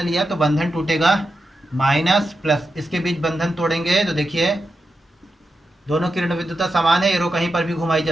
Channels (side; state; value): both; normal; correlation 0.88